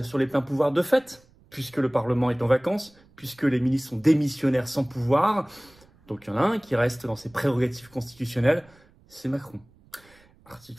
sur les pleins pouvoirs de fait, puisque le Parlement est en vacances, puisque les ministres sont démissionnaires sans pouvoir. Donc il y en a un qui reste dans ses prérogatives constitutionnelles, c'est Macron.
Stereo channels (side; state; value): right; noise; rumble, 29 dB below the sound